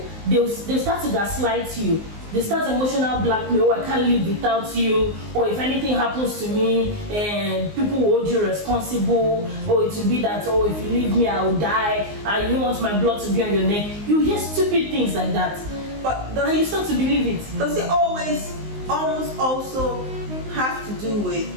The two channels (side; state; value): left; late; 19 ms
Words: they'll start to gaslight you. They start emotional blackmail. Oh, I can't live without you. Or if anything happens to me, and people will hold you responsible. Or it will be that, oh, if you leave me, I will die. I don't want my blood to be on your neck. You hear stupid things like that. But And you start to believe it. does it almost also have to do with